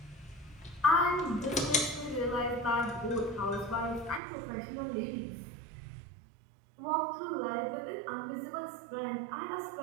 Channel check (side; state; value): left; drops out; at 4.2 s